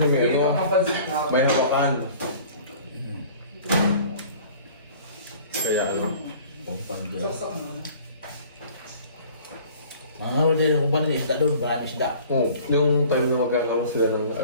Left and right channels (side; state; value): both; inverted; correlation -0.48